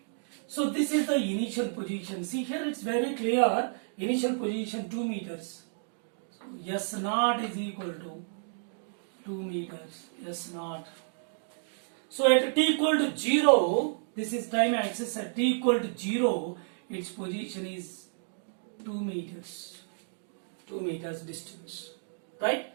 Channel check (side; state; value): left; silent; digital silence